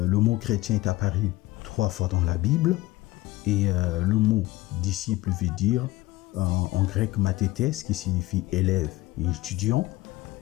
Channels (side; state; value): right; quieter; 18.7 dB